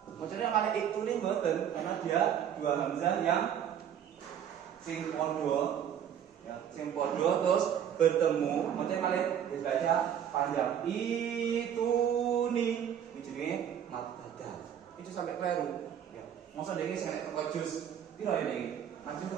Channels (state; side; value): quieter; left; 9.3 dB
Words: Maksudnya kalau iktuni mboten karena dia dua hamzah yang sing podo, ya, sing podo terus bertemu. Maksudnya kalau dibaca panjang ituni, ujungnya mat badal. Itu sampai keliru. Ya. Maksudnya ini saya teko jus. Piro ini? Maju